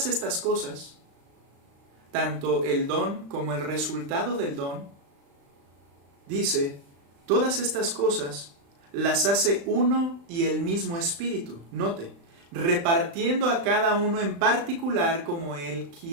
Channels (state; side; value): late; left; 35 ms